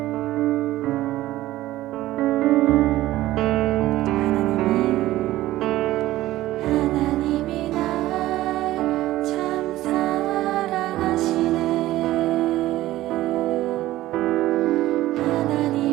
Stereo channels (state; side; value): quieter; left; 15.8 dB